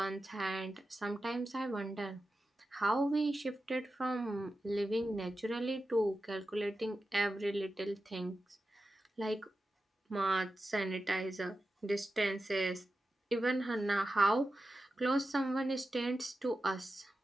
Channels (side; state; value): both; normal; correlation 0.91